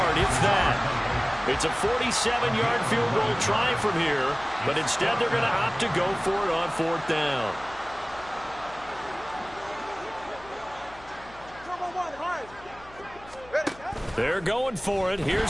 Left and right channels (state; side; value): noise; left; hum, 22 dB below the sound